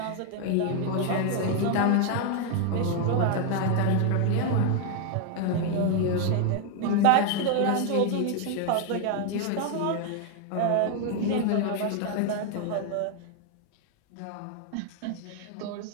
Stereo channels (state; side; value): different; both; correlation 0.00